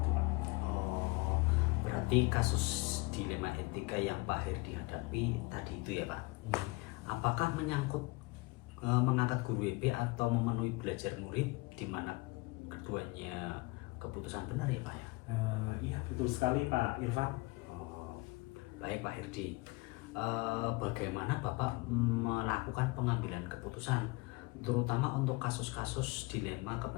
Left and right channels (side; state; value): right; quieter; 24.6 dB